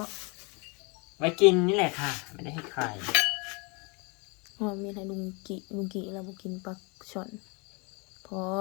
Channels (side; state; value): right; quieter; 30.7 dB